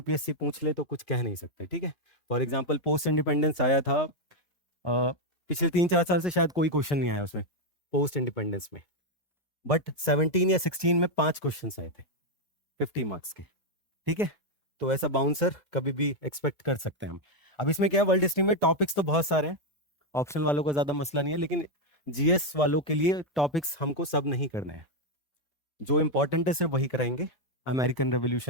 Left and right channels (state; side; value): late; right; 2.2 ms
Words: पूछ ले तो कुछ कह नहीं सकते। ठीक है, फॉर एग्जाम्पल पोस्ट इंडिपेंडेंस आया था, पिछले 3-4 साल से शायद कोई क्वेश्चन नहीं आया उसमें पोस्ट इंडिपेंडेंस में, बट 17 या 16 में 5 क्वेश्चन आए थे 50 मार्क्स के। ठीक है, तो ऐसा बाउंसर कभी भी एक्सपेक्ट कर सकते हैं हम। अब इसमें क्या है, वर्ल्ड हिस्ट्री में टॉपिक्स तो बहुत सारे हैं, ऑप्शन वालों का ज्यादा मसला नहीं है, लेकिन जीएस वालों के लिए टॉपिक्स हमको सब नहीं करने हैं, जो इंपॉर्टेंट है सिर्फ वही कराएंगे। अमेरिकन